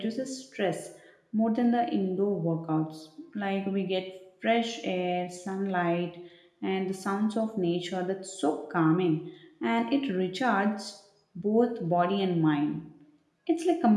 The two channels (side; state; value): both; identical; correlation 1.00